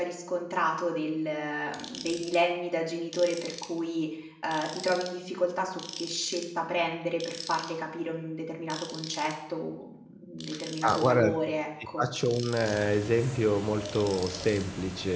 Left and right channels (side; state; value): both; identical; correlation 1.00